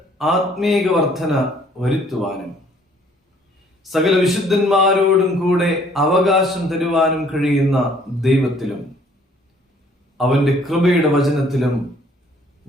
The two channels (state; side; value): normal; both; correlation 0.60